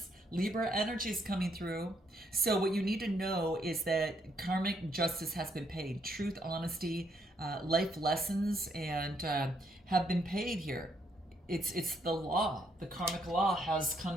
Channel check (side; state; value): both; normal; correlation 0.73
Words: Libra energy is coming through. So what you need to know is that karmic justice has been paid. Truth, honesty, life lessons, and have been paid here. It's the law. The karmic law has